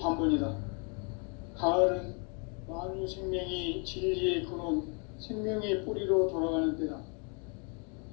가을은 만유 생명이 진리의 근원, 생명의 뿌리로 돌아가는 때다.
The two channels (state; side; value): quieter; right; 36.5 dB